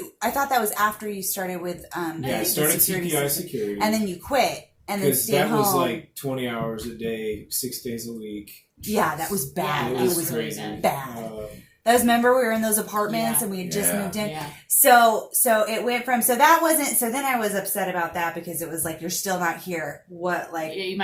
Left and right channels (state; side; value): identical; both; correlation 1.00